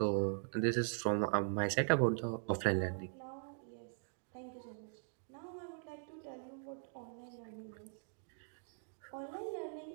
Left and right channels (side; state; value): left; silent; digital silence